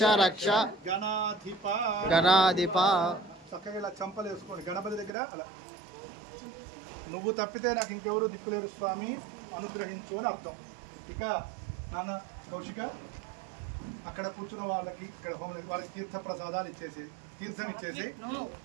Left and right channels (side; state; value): left; drops out; at 5.1 s